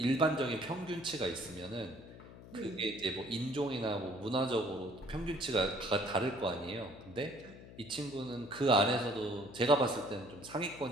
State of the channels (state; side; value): noise; left; hum, 17 dB below the sound